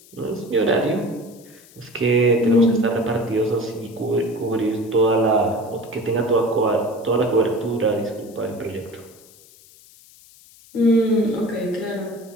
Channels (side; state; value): left; noise; hiss, 25 dB below the sound